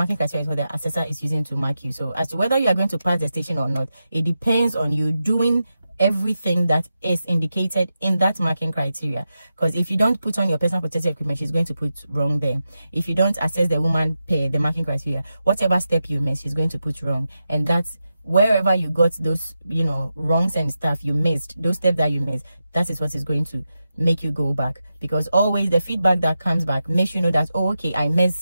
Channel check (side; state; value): both; inverted; correlation -0.90